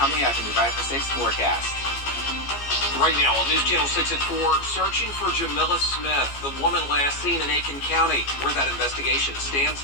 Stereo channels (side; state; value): right; late; 14 ms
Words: up in the 5 for 6 forecast. Right now on News Channel 6 at 4, searching for Jamila Smith, the woman last seen in Aiken County, where that investigation